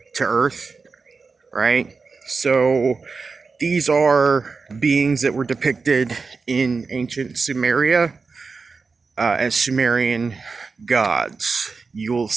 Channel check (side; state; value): left; quieter; 4.6 dB